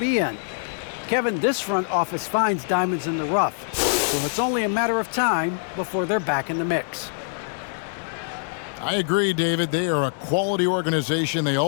in. Kevin, this front office finds diamonds in the rough, so it's only a matter of time before they're back in the mix. I agree, David. They are a quality organization. They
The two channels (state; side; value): silent; right; digital silence